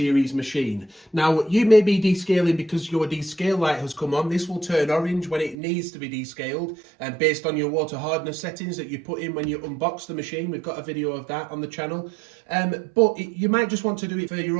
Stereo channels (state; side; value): drops out; left; at 5.6 s